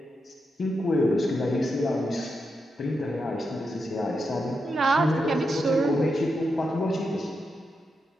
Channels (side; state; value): both; normal; correlation 0.85